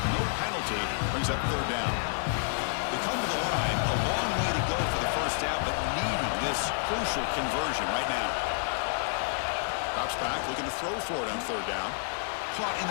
No penalty. Brings up 3rd down. They come to the line. A long way to go for the 1st down, but needing this crucial conversion right now. Drops back, looking to throw for it on 3rd down. Caught in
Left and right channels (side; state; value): right; silent; digital silence